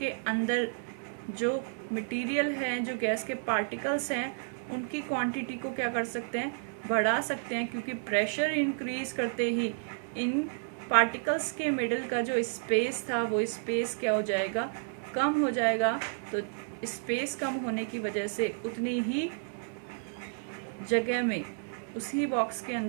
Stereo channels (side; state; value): left; silent; 57 dB below the other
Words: अंदर जो मटेरियल है, जो गैस के पार्टिकल्स हैं, उनकी क्वांटिटी को क्या कर सकते हैं, बढ़ा सकते हैं, क्योंकि प्रेशर इंक्रीज करते ही इन पार्टिकल्स के मिडल का जो स्पेस था वो स्पेस क्या हो जाएगा, कम हो जाएगा। तो स्पेस कम होने की वजह से उतनी ही जगह में उसी बॉक्स के